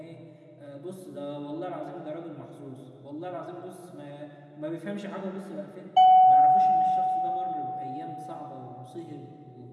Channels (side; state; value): both; identical; correlation 1.00